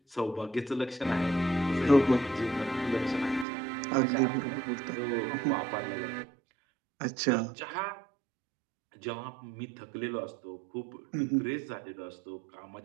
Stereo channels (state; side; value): drops out; left; at 3.5 s